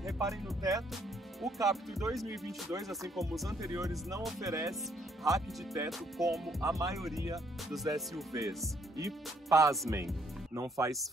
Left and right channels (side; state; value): both; normal; correlation 0.68